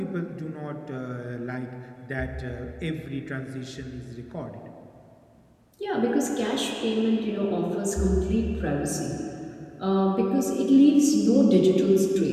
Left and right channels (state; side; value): identical; both; correlation 1.00